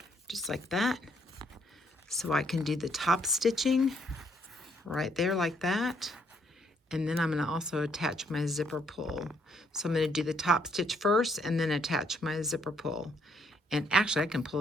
just like that. So I can do the top stitching right there like that. And then I'm going to also attach my zipper pull. So I'm going to do the top stitch first and then attach my zipper pull. And actually I can pull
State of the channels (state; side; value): normal; both; correlation 0.70